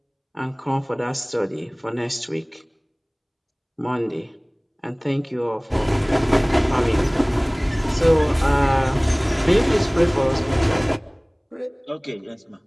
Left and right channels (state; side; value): identical; both; correlation 1.00